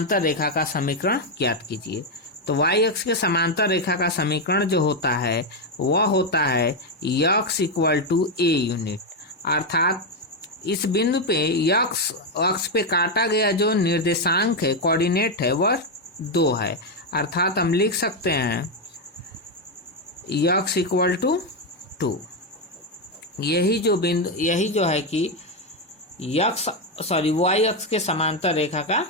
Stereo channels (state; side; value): normal; both; correlation 0.05